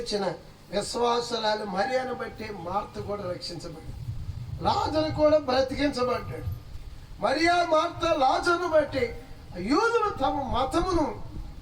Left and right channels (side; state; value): both; identical; correlation 1.00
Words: విశ్వాసురాలు మరియను బట్టి మార్త కూడా రక్షించబడ్డాడు, లాజరు కూడా బ్రతికించబడ్డాడు. మరియా, మార్త, లాజరును బట్టి యూదులు తమ మతమును